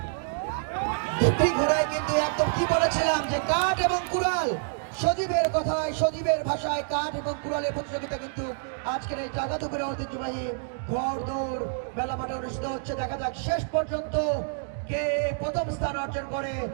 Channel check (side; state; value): left; silent; digital silence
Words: দুটি ঘোড়ায় কিন্তু একদম কি বলেছিলাম যে কাঠ এবং কুড়াল, সজীবের কথায় সজীবের ভাষায় কাঠ এবং কুড়ালের প্রতিযোগিতা কিন্তু আজকের এই জাগাতুপুরে ঐতিহ্যবাহী ঘোড় দৌড় মেলা মাঠে অনুষ্ঠিত হচ্ছে। দেখা যাক শেষ পর্যন্ত কে প্রথম স্থান অর্জন করে।